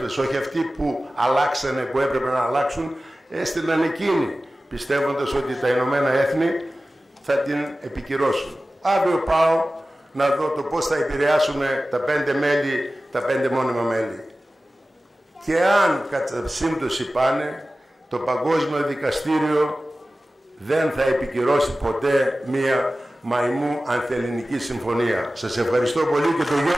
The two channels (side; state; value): both; normal; correlation 0.96